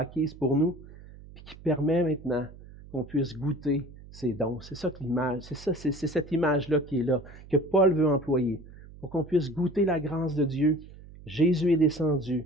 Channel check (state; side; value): noise; right; hum, 18 dB below the sound